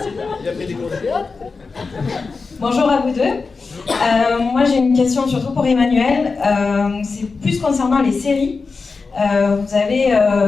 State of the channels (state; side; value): quieter; right; 4.4 dB